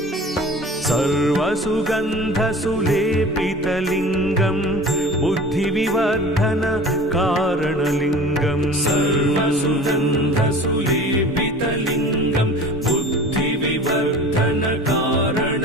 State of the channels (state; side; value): normal; both; correlation 0.40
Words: सर्वसुगन्धसुलेपितलिङ्गं बुद्धिविवर्धनकारणलिङ्गं सर्वसुगन्धसुलेपितलिङ्गं